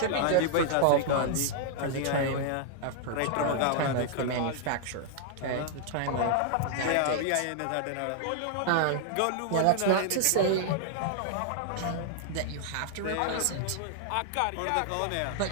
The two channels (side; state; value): both; different; correlation 0.00